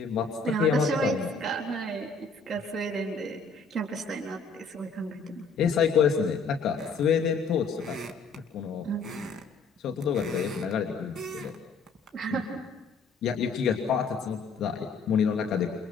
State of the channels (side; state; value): right; quieter; 4.4 dB